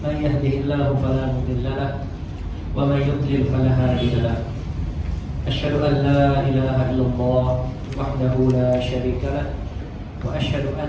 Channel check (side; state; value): both; identical; correlation 1.00